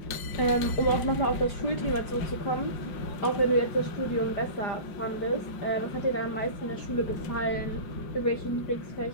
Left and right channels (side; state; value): right; late; 5.6 ms